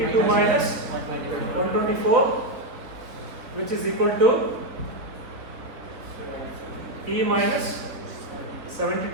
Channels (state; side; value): late; left; 3.8 ms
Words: minus 124, which is equal to E minus